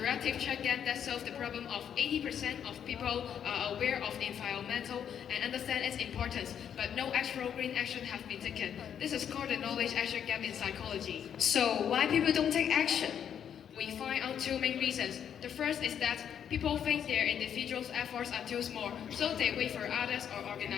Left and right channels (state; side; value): quieter; right; 8.7 dB